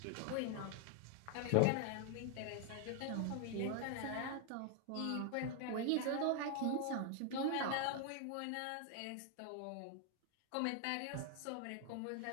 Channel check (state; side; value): different; both; correlation 0.00